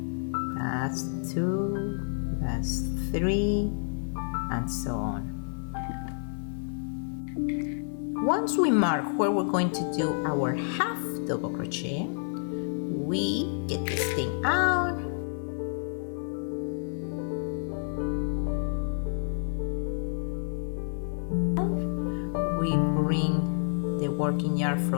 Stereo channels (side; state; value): right; silent; digital silence